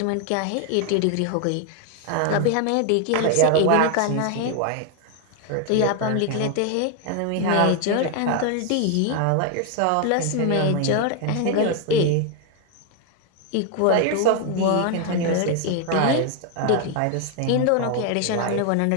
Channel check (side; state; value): both; different; correlation 0.01